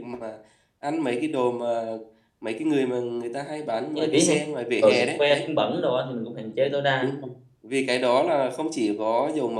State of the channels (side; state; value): both; identical; correlation 1.00